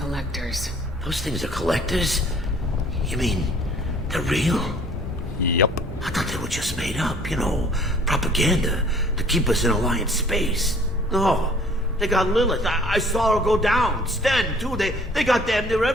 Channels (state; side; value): normal; both; correlation 0.54